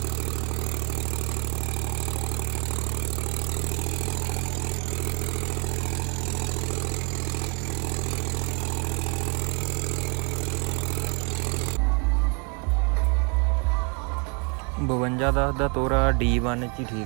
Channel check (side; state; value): left; quieter; 32.0 dB